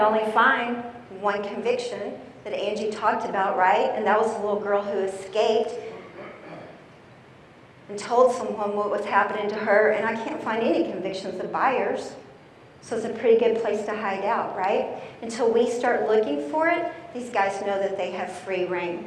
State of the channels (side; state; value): both; identical; correlation 1.00